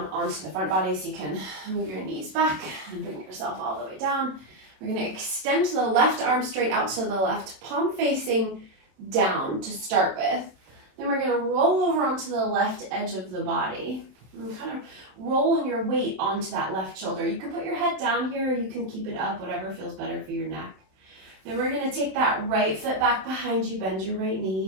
onto the front body so you can move your knees back and bring yourself all the way down. We're going to extend the left arm straight out to the left, palm facing down to start with. Then we're going to roll over onto the left edge of the body. And kind of rolling your weight onto that left shoulder. You can put your head down here, or you can keep it up, whatever feels better for your neck. Then we're going to take that right foot back behind you, bend your right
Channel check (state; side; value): late; left; 26 ms